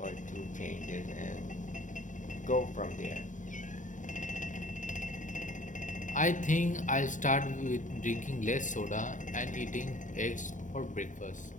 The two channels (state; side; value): late; right; 0.37 ms